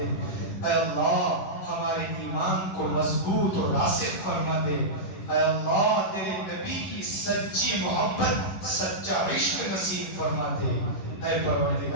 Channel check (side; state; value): right; late; 11 ms